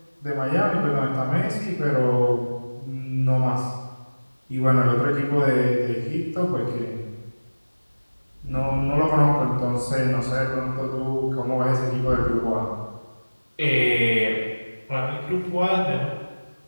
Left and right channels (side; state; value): both; inverted; correlation -1.00